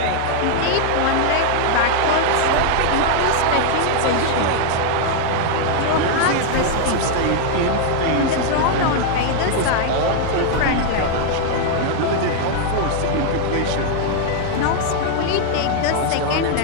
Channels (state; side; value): different; both; correlation 0.00